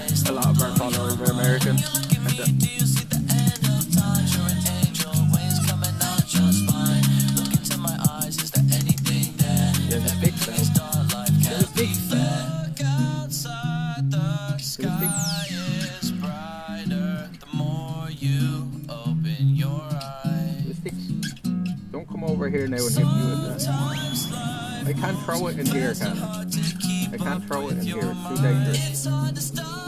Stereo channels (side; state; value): both; identical; correlation 1.00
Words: A lot of our followers are American. Don't come over here now and hit me with that. I can't throw it in here, can I? I can't throw it in here. It's too dangerous.